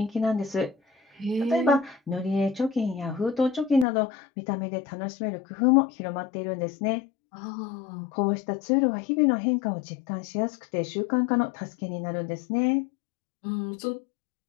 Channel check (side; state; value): right; drops out; at 3.9 s